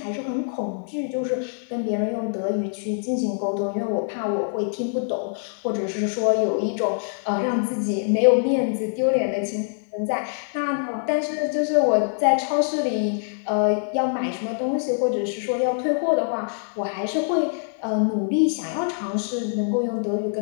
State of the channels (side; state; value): right; silent; 62 dB below the other